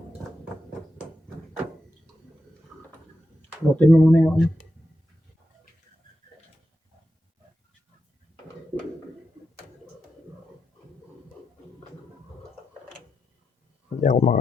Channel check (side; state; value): both; normal; correlation 0.87